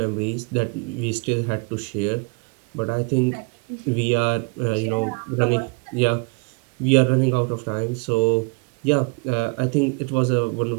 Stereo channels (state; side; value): quieter; left; 30.5 dB